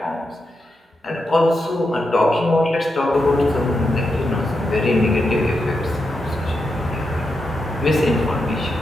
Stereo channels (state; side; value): normal; both; correlation 0.86